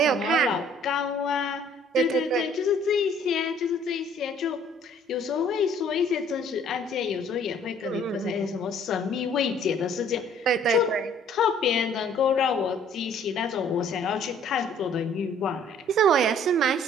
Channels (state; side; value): normal; both; correlation 0.58